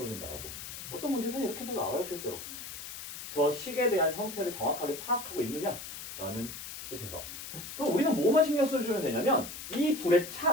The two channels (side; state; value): left; noise; hiss, 10 dB below the sound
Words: 어떤 문제에서는 이렇게도 나와요, 실제로. 저 식에 대한 형태를 정확하게 파악하고 있느냐라는 뜻에서. 그럼 우리는 뭐만 신경 써주면 되냐면 이 둘의